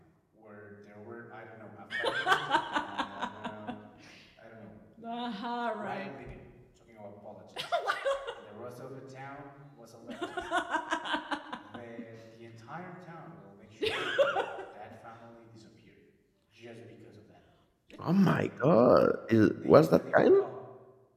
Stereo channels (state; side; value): identical; both; correlation 1.00